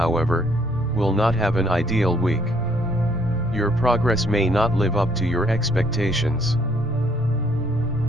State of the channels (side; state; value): both; normal; correlation 0.66